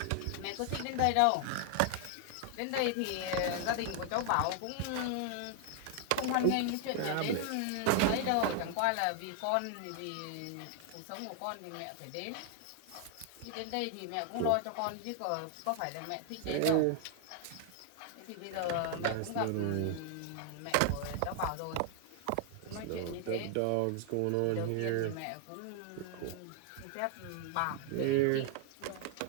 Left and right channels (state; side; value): different; both; correlation 0.00